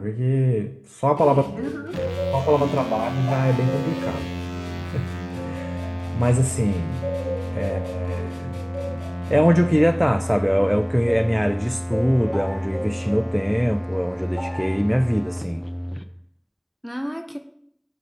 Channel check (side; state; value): both; identical; correlation 1.00